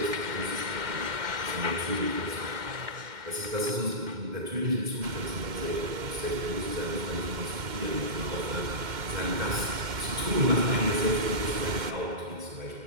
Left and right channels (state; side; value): late; left; 2.1 ms